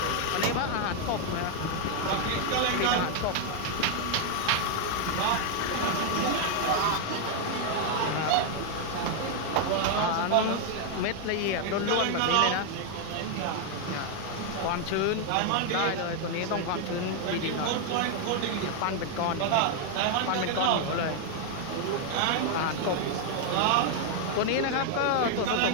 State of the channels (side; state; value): both; different; correlation 0.00